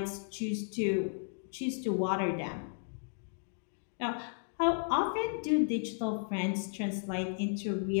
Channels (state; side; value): silent; right; digital silence